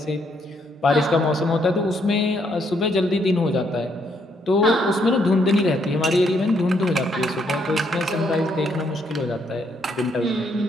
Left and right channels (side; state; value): both; normal; correlation 0.72